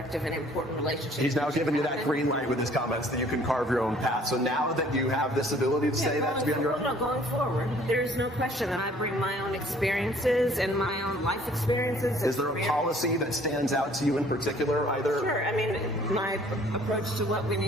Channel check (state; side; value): normal; both; correlation 0.56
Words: and important relationship. He's now giving you that green light with his comments that you can carve your own path. So now that you have this ability to say that to be on your own? No, going forward, there's no question that I bring my own experiences and my own life experiences. Is there a policy that stands out to you in particular, either? Sure. I mean, my approach to what we